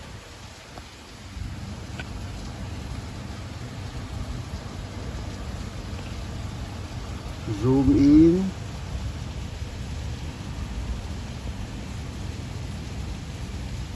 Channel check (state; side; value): identical; both; correlation 1.00